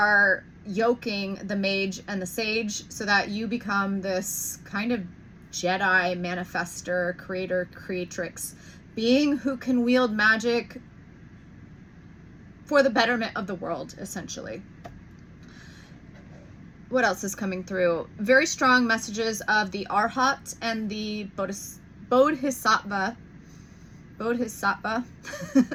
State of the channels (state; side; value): identical; both; correlation 1.00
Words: yoking the mage and the sage so that you become this kind of Jedi manifester, creator, creatrix being who can wield magic for the betterment of the world, essentially. What else is coming through? Very strong messages of the Arhat and the Bodhisattva.